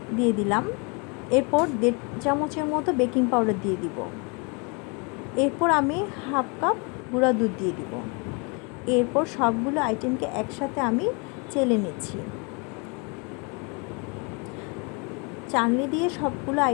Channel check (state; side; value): quieter; right; 32.5 dB